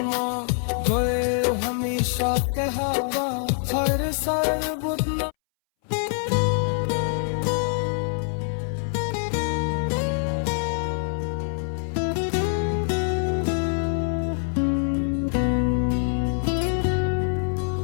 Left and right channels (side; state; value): right; silent; 62 dB below the other